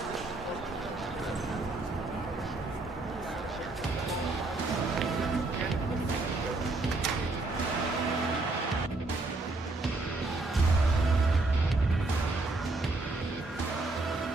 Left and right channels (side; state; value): left; quieter; 3.2 dB